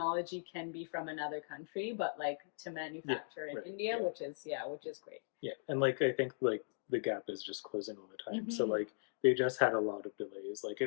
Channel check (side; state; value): right; silent; digital silence